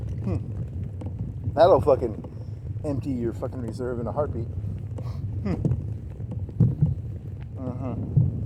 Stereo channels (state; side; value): identical; both; correlation 1.00